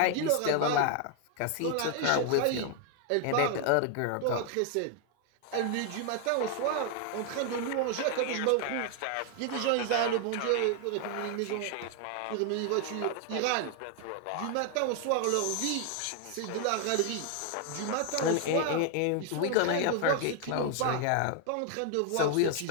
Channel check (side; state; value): both; different; correlation 0.00